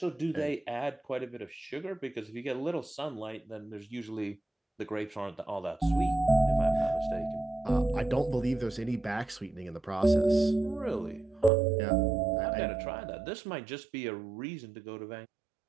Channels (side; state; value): left; drops out; at 11.5 s